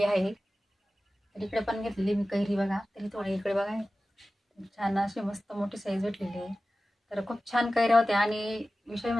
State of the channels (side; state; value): both; normal; correlation 0.95